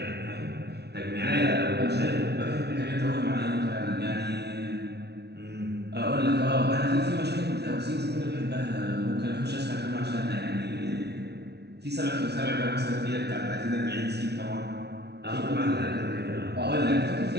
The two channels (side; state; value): left; late; 0.49 ms